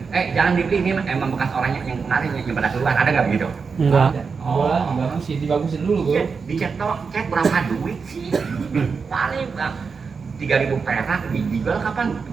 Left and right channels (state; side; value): quieter; left; 5.3 dB